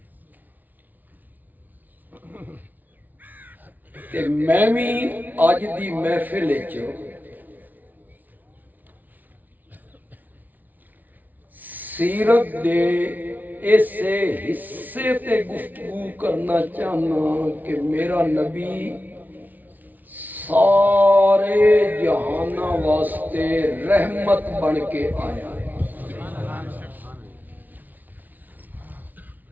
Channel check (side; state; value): left; late; 0.080 ms